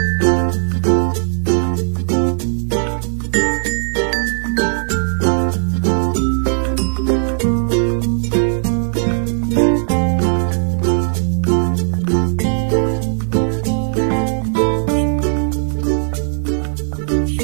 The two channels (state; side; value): silent; left; digital silence